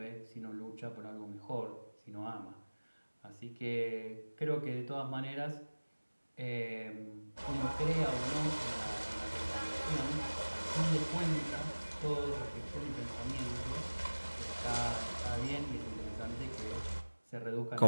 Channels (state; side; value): inverted; both; correlation -1.00